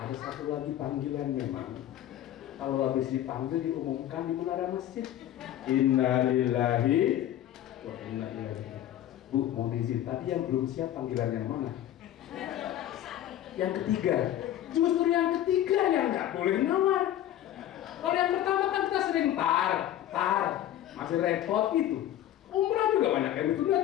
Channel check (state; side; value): quieter; right; 12.2 dB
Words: satu lagi panggilan memang. Kalau habis dipanggil diumumkan di menara masjid. Innalillahi wa inna ilaihi. Bu, mau izin, tadi yang belum siap panggilan yang mana? Yang ketiga. Justru yang ketiga yang nggak boleh nawar. Kalau yang pertama kan kita sering tar, masih repot itu. Umrah juga banyak yang